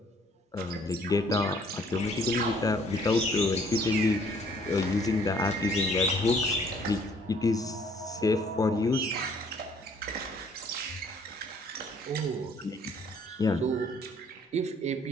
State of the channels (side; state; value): both; normal; correlation 0.60